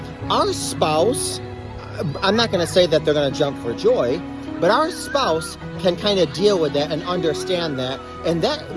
Our spouse, I'm not going to say that they're going to jump for joy, but our spouse can kind of deal with that and understand that. And that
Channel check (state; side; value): identical; both; correlation 1.00